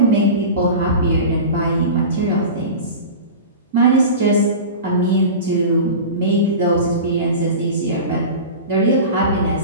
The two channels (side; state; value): both; inverted; correlation -0.31